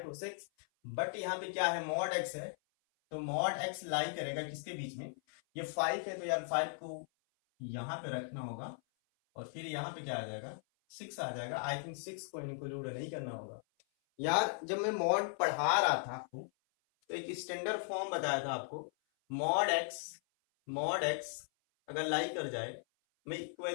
to 6, बट यहाँ पे क्या है? मॉड x है, तो मॉड x लाई करेगा किसके बीच में? ये 5 है, तो यार 5 को यहाँ पे रखना होगा, और फिर यहाँ पे क्या आ जाएगा? 6 आ जाएगा। आई थिंक 6 को इंक्लूड नहीं करना होगा। यार जब मैं मॉड पढ़ा रहा था आपको, तो एक स्टैंडर्ड फॉर्म बताया था आपको, मॉड एक्स अगर लाई कर जाए, मैं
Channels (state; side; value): silent; right; 53 dB below the other